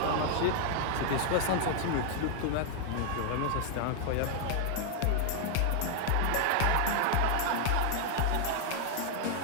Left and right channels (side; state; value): both; different; correlation 0.00